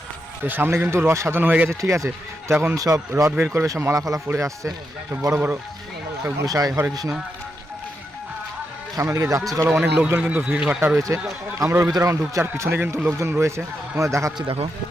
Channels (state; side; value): normal; both; correlation 0.84